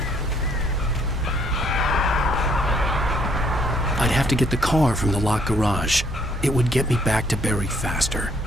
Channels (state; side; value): normal; both; correlation 0.66